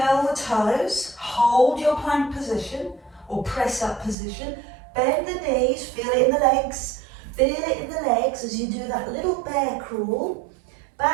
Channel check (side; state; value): left; drops out; at 4.2 s